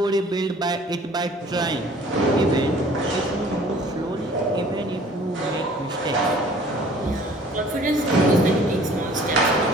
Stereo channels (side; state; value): both; normal; correlation 0.52